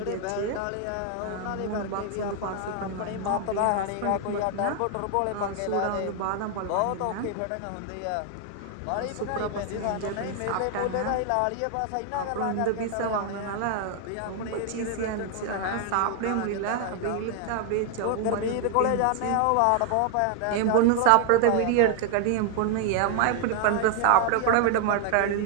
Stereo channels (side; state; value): both; different; correlation 0.00